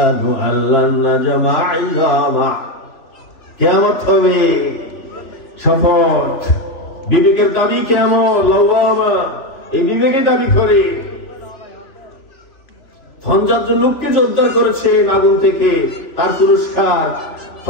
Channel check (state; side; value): late; right; 3.4 ms